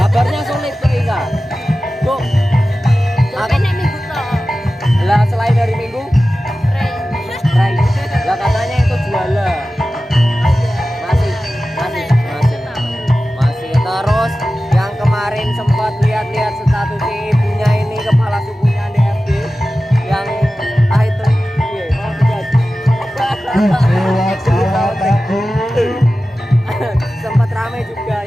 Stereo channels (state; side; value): normal; both; correlation 0.95